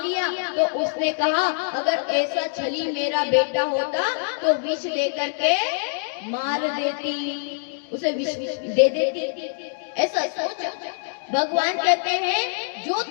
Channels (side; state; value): right; silent; 62 dB below the other